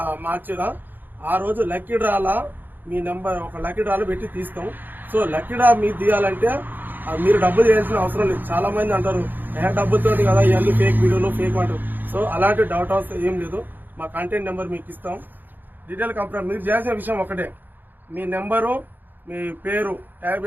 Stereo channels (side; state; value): left; late; 0.089 ms